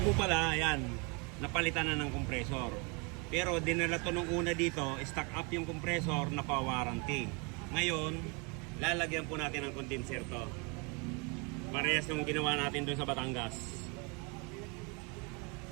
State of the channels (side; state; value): left; quieter; 31.8 dB